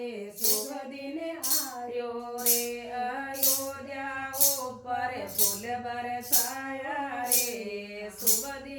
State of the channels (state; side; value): identical; both; correlation 1.00